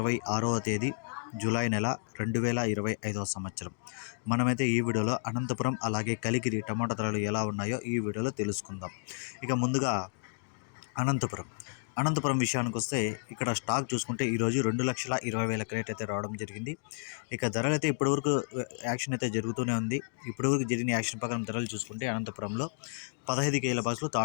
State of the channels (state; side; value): silent; right; digital silence